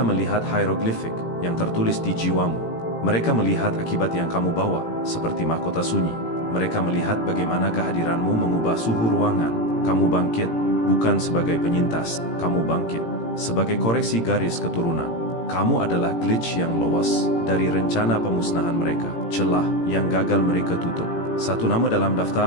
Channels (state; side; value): late; right; 18 ms